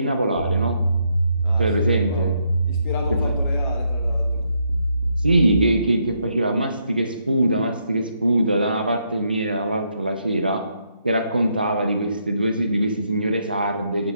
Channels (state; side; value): inverted; both; correlation -0.76